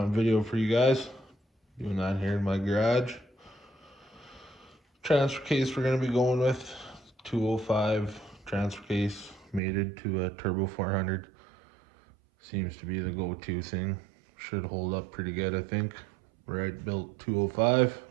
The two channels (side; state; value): left; drops out; at 9.6 s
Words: video for you guys. Doing that here in my garage. Transfer case we're gonna be going with 205 transfer case, mated to a turbo 400. Seems to be the go-to thing. Should hold up pretty good, I think. Right built 205.